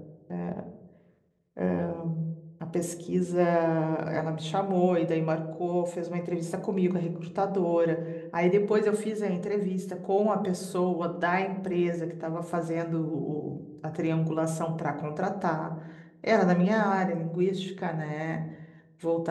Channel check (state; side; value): identical; both; correlation 1.00